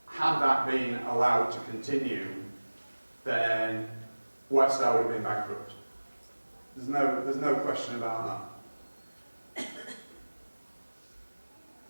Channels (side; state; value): both; inverted; correlation -1.00